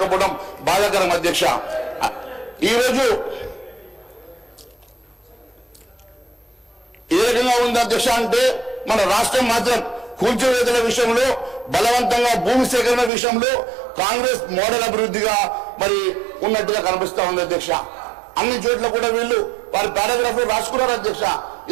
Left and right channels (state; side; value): drops out; left; at 13.1 s